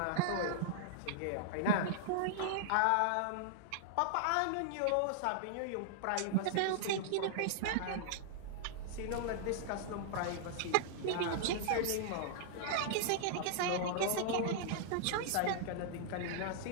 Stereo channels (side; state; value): both; different; correlation -0.01